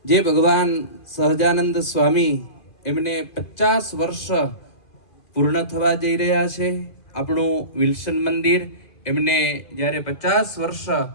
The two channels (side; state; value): right; late; 2.4 ms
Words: જે ભગવાન સહજાનંદ સ્વામી એમને 50 વર્ષ પૂર્ણ થવા જઈ રહ્યા છે. આપણું વિલ્સન મંદિર એમને જ્યારે 50 વર્ષ